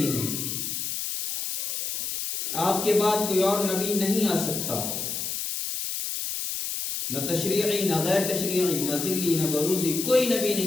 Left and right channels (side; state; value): left; noise; hiss, 3 dB below the sound